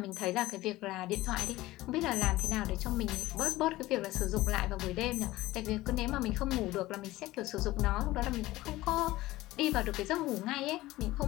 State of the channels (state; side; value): quieter; right; 17.7 dB